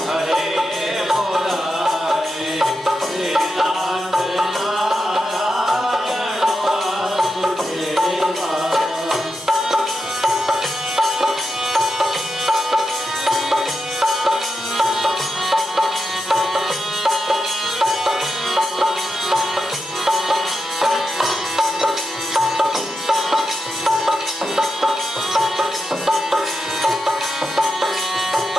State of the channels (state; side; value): normal; both; correlation 0.87